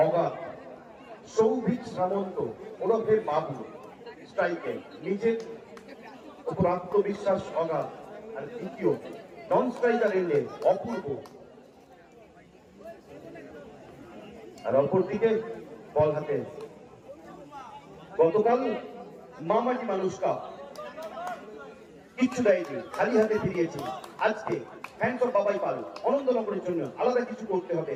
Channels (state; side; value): identical; both; correlation 1.00